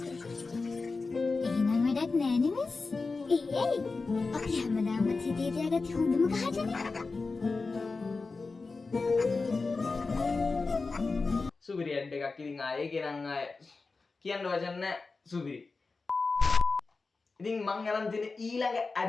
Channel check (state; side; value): quieter; right; 4.0 dB